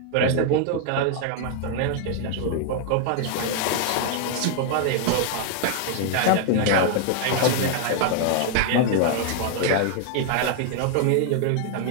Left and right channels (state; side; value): different; both; correlation 0.00